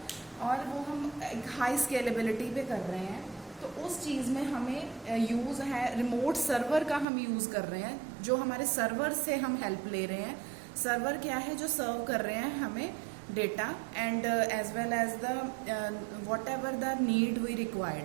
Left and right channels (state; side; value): drops out; left; at 7.1 s